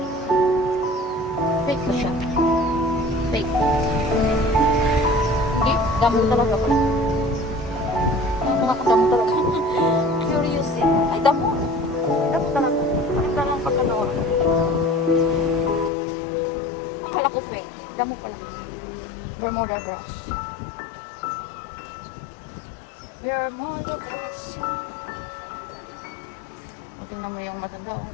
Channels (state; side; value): drops out; right; at 15.9 s